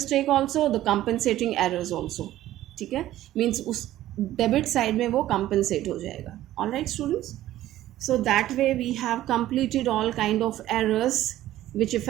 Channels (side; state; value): left; quieter; 14.1 dB